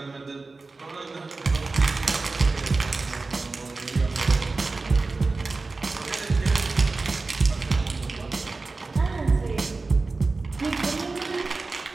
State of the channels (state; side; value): quieter; left; 3.7 dB